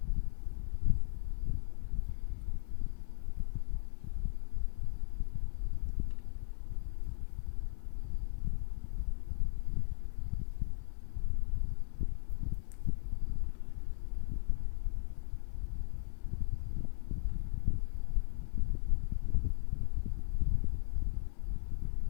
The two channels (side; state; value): right; silent; 54 dB below the other